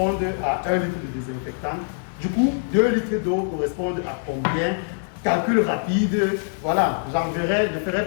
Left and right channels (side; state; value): right; silent; digital silence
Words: à 1 litre de désinfectant, du coup, 2 litres d'eau correspondent à combien? Calcul rapide, voilà, je ferai